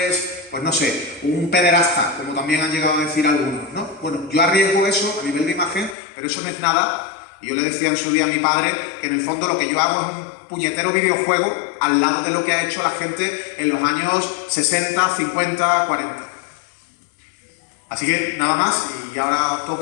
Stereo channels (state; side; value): drops out; right; at 6.0 s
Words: es, pues no sé, un pederasta, como también han llegado a decir algunos, ¿no? Bueno, yo arriesgo eso a nivel de imagen, pero eso no es nada. Y yo le decía en su día a mi padre que en el fondo lo que yo hago es un puñetero videojuego al lado de lo que ha hecho la gente en los años 60, 50, 40. Así que nada más, y ahora os